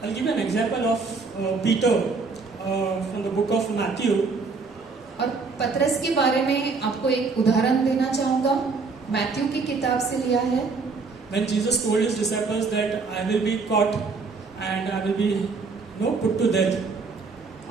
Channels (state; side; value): quieter; left; 4.4 dB